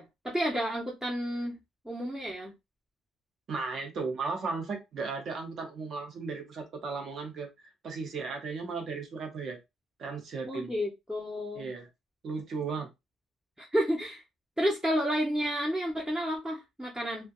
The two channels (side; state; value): both; normal; correlation 0.82